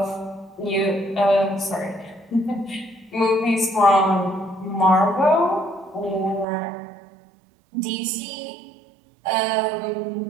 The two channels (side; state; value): left; drops out; at 6.5 s